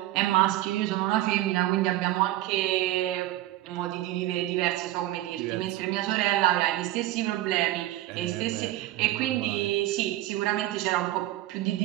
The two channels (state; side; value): quieter; left; 15.4 dB